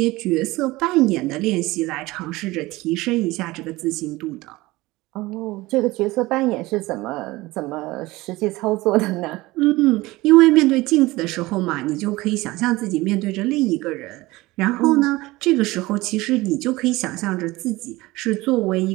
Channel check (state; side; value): quieter; left; 20.1 dB